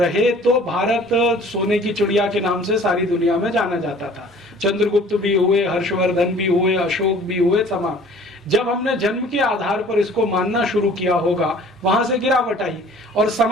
तो भारत सोने की चिड़िया के नाम से सारी दुनिया में जाना जाता था। चंद्रगुप्त भी हुए, हर्षवर्धन भी हुए, अशोक भी हुए, तमाम। जब हमने जन्म के आधार पर इसको मानना शुरू किया होगा, वहां से गिरावट आई, और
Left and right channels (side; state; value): both; normal; correlation 0.50